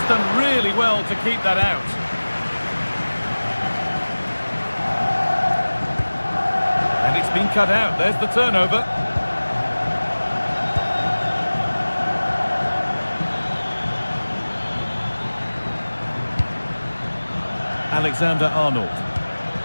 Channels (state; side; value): inverted; both; correlation -1.00